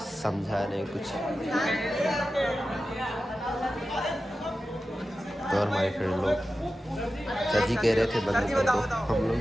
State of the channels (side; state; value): both; normal; correlation 0.93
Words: नहीं कुछ। तो और हमारे फ्रेंड लोग चाची कह रहे थे बंद कर दो, हम लोग